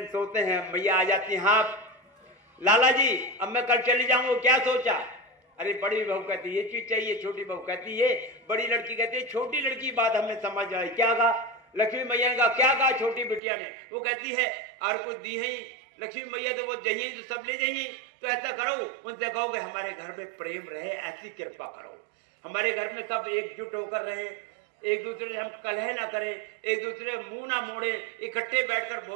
सोते हैं, मैया आ जाती हैं, हाँ लाला जी अब मैं कल चली जाऊंगा, क्या सोचा? अरे बड़ी बहू कहती ये चीज चाहिए, छोटी बहू कहती ये, बड़ी लड़की कहती है, छोटी लड़की बात हमें समझ आई, क्या कहा? लक्ष्मी मैया ने कहा, क्या कहा छोटी बिटिया ने? वो कहती है और कुछ दी है लक्ष्मी मैया तो वो जाइए तो सब ले जाइए, तो ऐसा करो उनसे कहो कि हमारे घर में प्रेम रहे, ऐसी कृपा करो, हमारे घर में सब एकजुट होकर रहे, एक दूसरे से हम कलह ना करें, एक दूसरे मुंह ना मोड़े, इकट्ठे बैठकर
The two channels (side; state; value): left; drops out; at 13.4 s